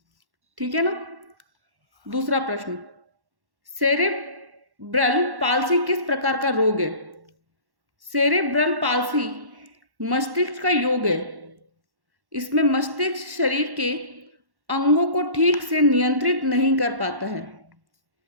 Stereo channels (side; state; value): left; late; 1.1 ms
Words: ठीक है ना। दूसरा प्रश्न, सेरेब्रल पाल्सी किस प्रकार का रोग है? सेरेब्रल पाल्सी मस्तिष्क का योग है, इसमें मस्तिष्क शरीर के अंगों को ठीक से नियंत्रित नहीं कर पाता है,